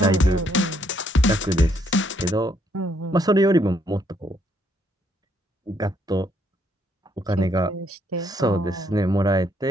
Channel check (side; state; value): both; normal; correlation 0.71